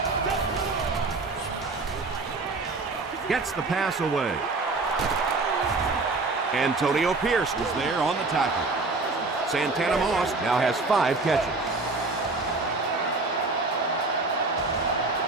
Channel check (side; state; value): left; quieter; 3.6 dB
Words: Gets the pass away. Antonio Pierce was there on the tackle. Santana Moss now has 5 catches.